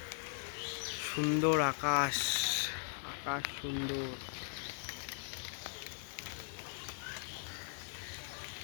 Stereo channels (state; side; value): silent; right; 52 dB below the other